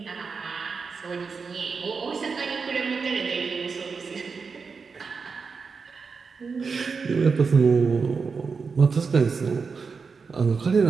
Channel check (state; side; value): quieter; left; 5.1 dB